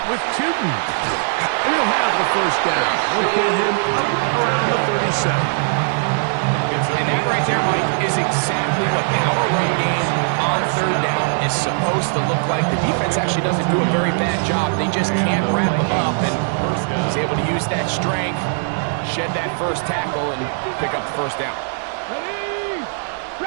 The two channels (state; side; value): silent; left; digital silence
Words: with Tootin. And he'll have the first down. We'll get him up around the 37. And that right there, Mike, is exactly what power run game on third down is supposed to look like. The defense actually doesn't do a very bad job. They just can't wrap them up, and he's able to use that strength, shed that first tackle, and pick up the first down. Ready?